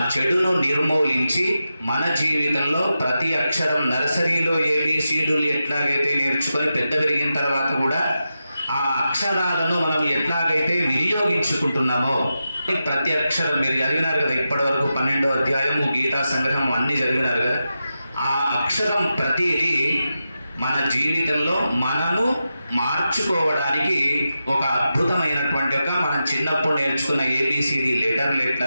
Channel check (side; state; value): both; inverted; correlation -0.90